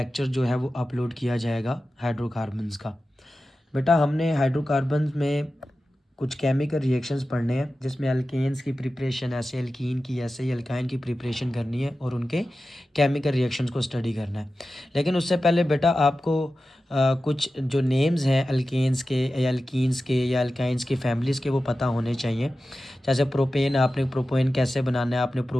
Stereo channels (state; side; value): normal; both; correlation 0.94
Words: जो है वो अपलोड किया जाएगा हाइड्रोकार्बन्स का। बेटा हमने हाइड्रोकार्बन्स में कुछ केमिकल रिएक्शंस पढ़ने हैं, जिसमें अल्केन्स की प्रिपरेशन ऐसे, अल्कीन की ऐसे ही, अल्काइन की प्रिपरेशन करनी है और उनके केमिकल रिएक्शंस को स्टडी करना है। लेकिन उससे पहले बेटा आपको कुछ जो नेम्स हैं अल्केन्स के या अल्कीन्स के या अल्काइंस के फैमिलीज़ के वो पता होने चाहिए। जैसे प्रोपेन, आपने प्रोपेन कैसे बनाना है, आपने